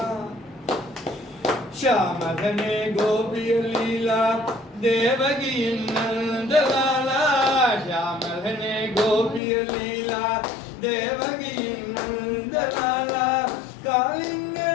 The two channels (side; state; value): right; drops out; at 9.4 s